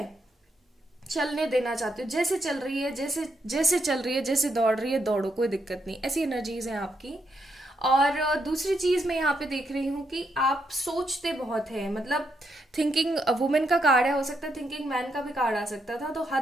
चलने देना चाहते हो, जैसे चल रही है, जैसे जैसे चल रही है, जैसे दौड़ रही है दौड़ो, कोई दिक्कत नहीं, ऐसी एनर्जीज हैं आपकी। और दूसरी चीज मैं यहाँ पे देख रही हूँ कि आप सोचते बहुत हैं। मतलब थिंकिंग वुमेन का कार्ड है, हो सकता है थिंकिंग मैन का भी कार्ड आ सकता था। तो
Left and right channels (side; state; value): both; normal; correlation 0.79